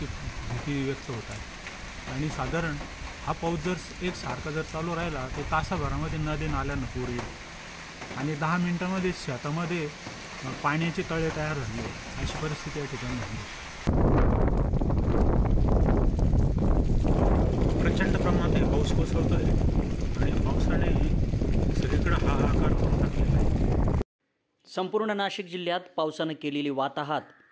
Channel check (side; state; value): both; identical; correlation 1.00